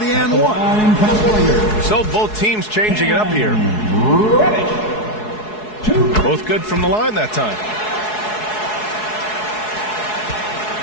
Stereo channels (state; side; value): late; right; 4.7 ms